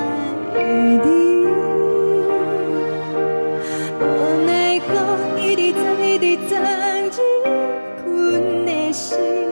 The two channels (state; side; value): inverted; both; correlation -1.00